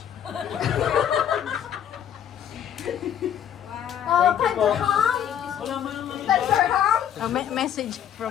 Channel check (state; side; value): quieter; right; 9.6 dB